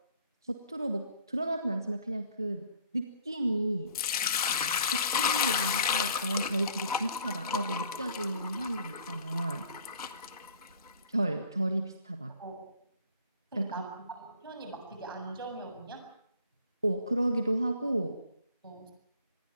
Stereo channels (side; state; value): both; inverted; correlation -0.54